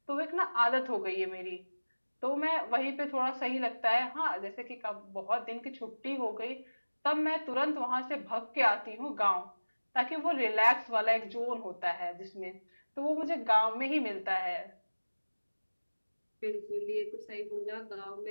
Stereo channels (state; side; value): inverted; both; correlation -1.00